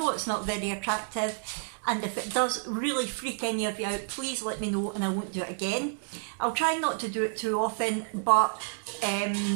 it's not very attractive, and if it does really freak any of you out, please let me know and I won't do it again. I'll try not to do it too often, but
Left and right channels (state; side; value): silent; left; digital silence